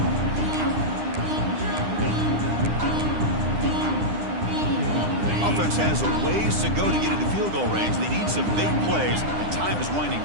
Offense has a ways to go to get into field goal range. They need some big plays, and time is winding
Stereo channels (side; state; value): left; late; 9.9 ms